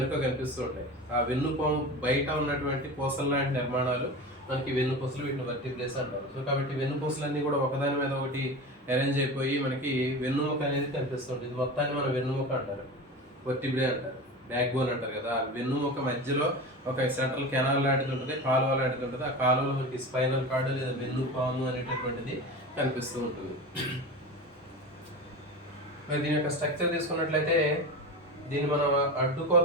కనిపిస్తూ ఉంటాయి. ఆ వెన్నుపాము బయట ఉన్నటువంటి పూసల లాంటి నిర్మాణాలు మనకి వెన్నుపూసలు, వీటిని వర్టిబ్రేస్ అంటారు. సో కాబట్టి వెన్నుపూసలన్నీ కూడా ఒకదాని మీద ఒకటి అరేంజ్ అయిపోయి మనకి వెన్నుముక అనేది కనిపిస్తుంది. ఇది మొత్తాన్ని మనం వెన్నుముక అంటారు, వర్టిబ్రే అంటారు, బ్యాక్ బోన్ అంటారు కదా. ఆ వెన్నుముక మధ్యలో ఒక సెంట్రల్ కెనాల్ లాంటిది ఉంటుంది, కాలువ లాంటిది ఉంటుంది. ఆ కాలువలో మనకి స్పైనల్ కార్డు లేదా వెన్నుపాము అనేటటువంటిది కనిపిస్తూ ఉంటుంది. మరి దీని యొక్క స్ట్రక్చర్ తీసుకున్నట్లయితే, దీన్ని మనం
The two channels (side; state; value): both; normal; correlation 0.28